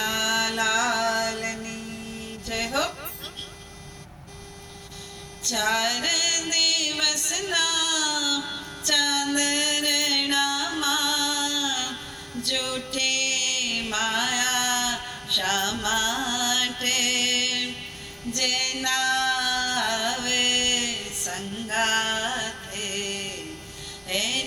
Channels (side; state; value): both; identical; correlation 1.00